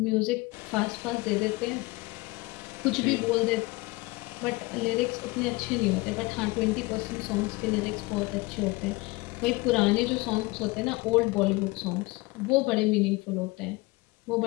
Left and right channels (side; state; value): right; quieter; 23.1 dB